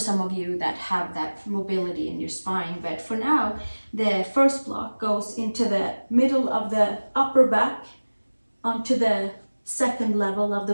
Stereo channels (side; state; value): both; inverted; correlation -1.00